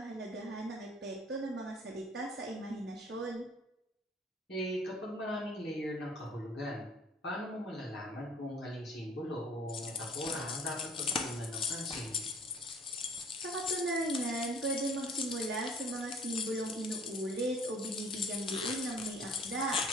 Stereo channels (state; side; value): normal; both; correlation 0.53